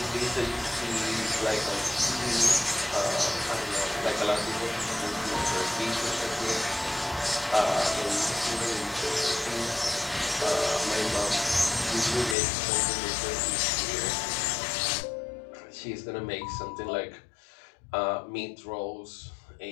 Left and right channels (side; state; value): right; drops out; at 12.4 s